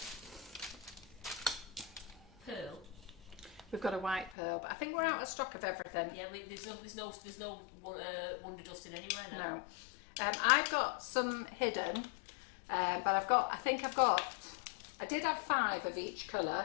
Pearl. We've got a white pearl, but I think we're out of stock of everything. Yeah, there's no Wonder Dust in anywhere now. No. I've got some hidden, but I did have 5 of each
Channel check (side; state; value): right; drops out; at 4.4 s